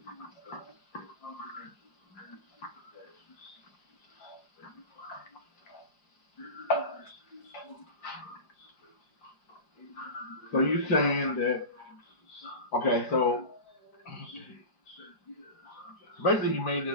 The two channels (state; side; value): late; right; 4.9 ms